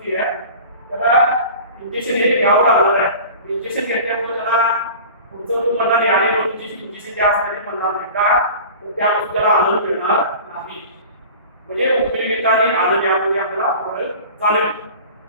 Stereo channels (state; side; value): inverted; both; correlation -0.39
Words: आहे त्याला इंजेक्शन हे घ्यावं लागणार आहे. इंजेक्शन घेतल्यामुळे त्याला पुढचं तुम्ही म्हणणार आणि इंजेक्शन जे असतं ते म्हणणार नाही का त्यापासून त्याला आनंद मिळणार नाही. म्हणजे उपयोगिता आणि आनंद यामध्ये आपल्याला फरक जाणवेल.